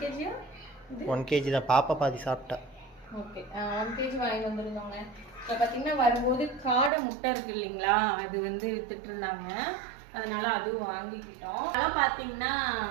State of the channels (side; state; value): left; drops out; at 6.9 s